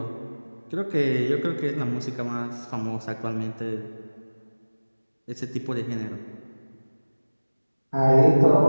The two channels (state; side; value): inverted; both; correlation -1.00